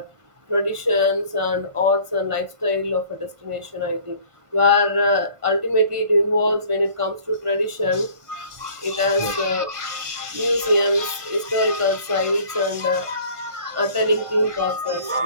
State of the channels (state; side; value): late; left; 1.5 ms